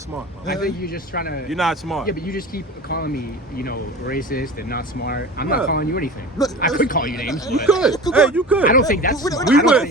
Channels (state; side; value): normal; both; correlation 0.35